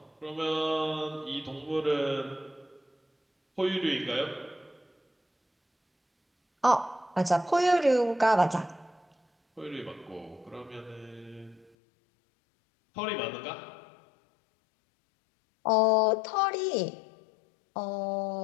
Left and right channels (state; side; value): drops out; right; at 11.7 s